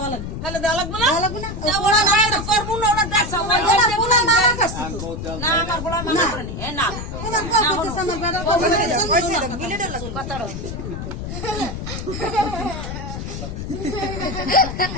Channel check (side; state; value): left; noise; rumble, 7 dB below the sound